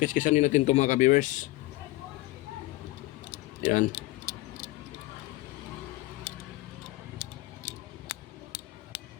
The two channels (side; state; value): right; quieter; 19.3 dB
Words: din natin to mga ka-viewers. Yan.